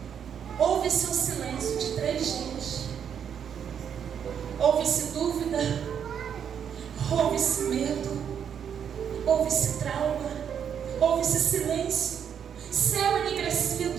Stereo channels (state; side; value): quieter; left; 8.1 dB